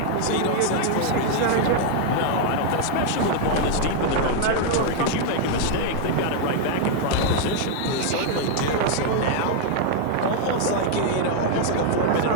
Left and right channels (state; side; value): different; both; correlation 0.00